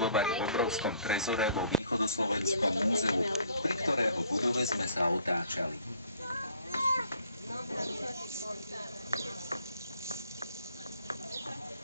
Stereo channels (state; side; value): inverted; both; correlation -0.60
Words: v obrovskom trezore vo Východoslovenskom múzeu, pri ktorého budove sme sa otáčali.